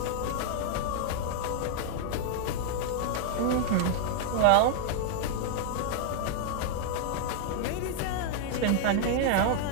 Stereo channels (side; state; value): both; different; correlation 0.00